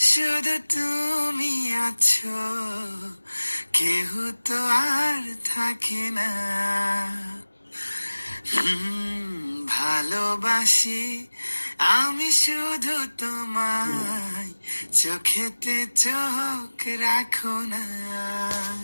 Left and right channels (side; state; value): both; inverted; correlation -1.00